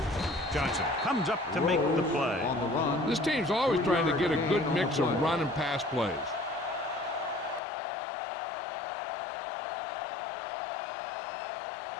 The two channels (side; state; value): right; drops out; at 7.6 s